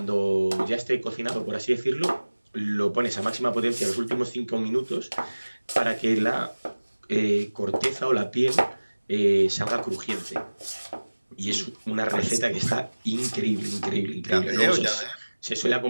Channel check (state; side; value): inverted; both; correlation -1.00